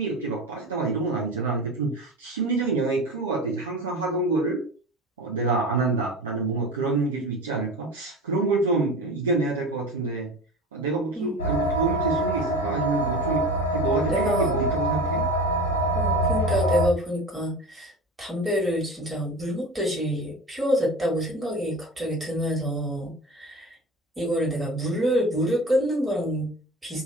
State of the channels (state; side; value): normal; both; correlation 0.32